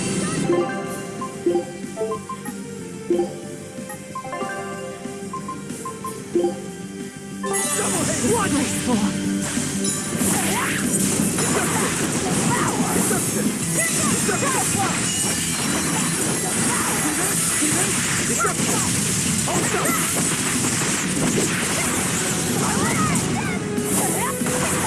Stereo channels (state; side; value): identical; both; correlation 1.00